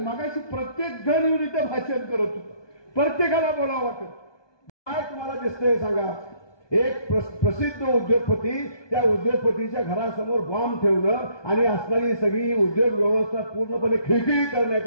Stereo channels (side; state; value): right; late; 1.2 ms